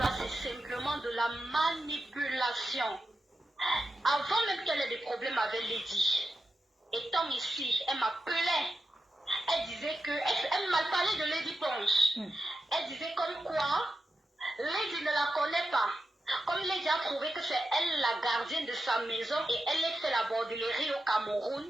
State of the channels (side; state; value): both; normal; correlation 0.89